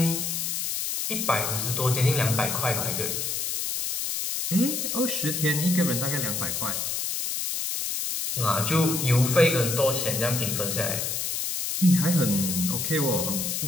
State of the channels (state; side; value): noise; left; hiss, 2 dB below the sound